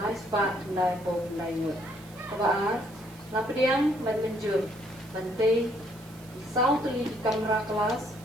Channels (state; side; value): noise; right; hiss, 23 dB below the sound